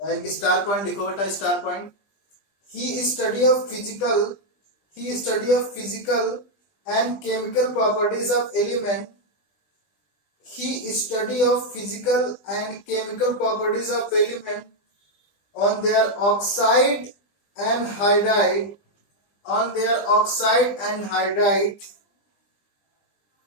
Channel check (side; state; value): right; late; 20 ms